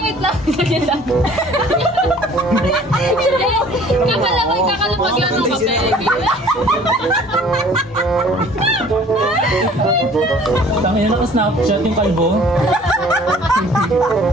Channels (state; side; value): normal; both; correlation 0.51